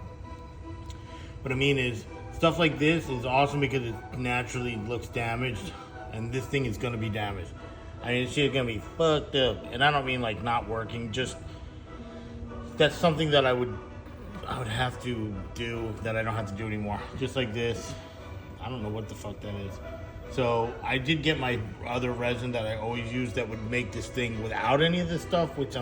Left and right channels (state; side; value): identical; both; correlation 1.00